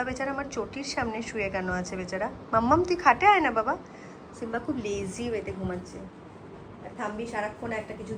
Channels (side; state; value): both; identical; correlation 1.00